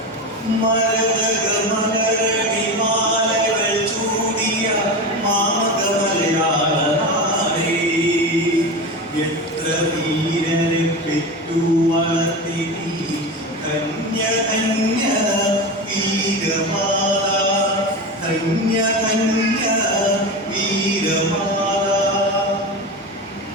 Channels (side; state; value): both; normal; correlation 0.24